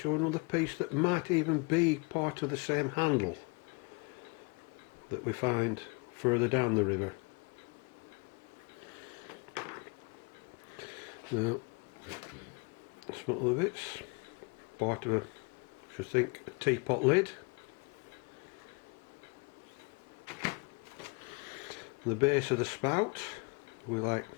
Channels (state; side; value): quieter; right; 31.7 dB